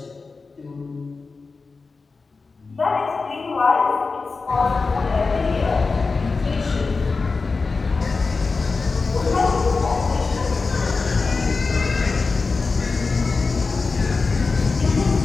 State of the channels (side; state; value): right; quieter; 4.2 dB